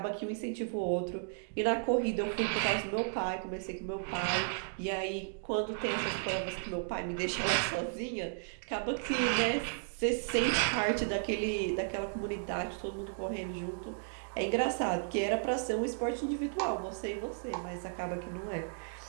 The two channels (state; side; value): silent; left; digital silence